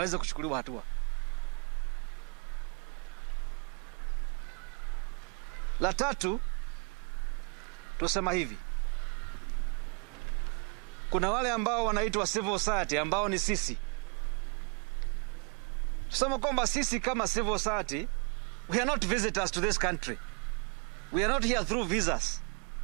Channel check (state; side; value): quieter; left; 35.9 dB